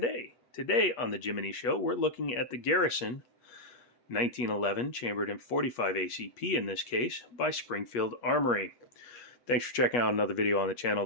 Today on the Jiminy Show, we're looking at the Garrison 1911 chambered in 45 ACP in this case by Springfield Armory. Thanks for checking out another video on the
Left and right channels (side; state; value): right; late; 8.3 ms